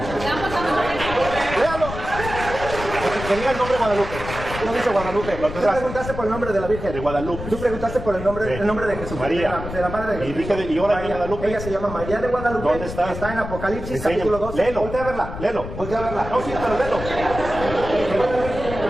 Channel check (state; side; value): noise; left; rumble, 9 dB below the sound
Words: Léalo. Que diga el nombre Guadalupe. No dice Guadalupe. Tú preguntaste por el nombre de la Virgen. De Guadalupe. Tú preguntaste por el nombre de Jesús. María. De la madre de Jesús. Y ahora de Guadalupe. Ella se llama María de Guadalupe. ¿Dónde está? Está en Apocalipsis, Enséñame. capítulo 12. Léelo. Voltea a verla. Léelo. Voltea a verla. No, sí, pero léelo.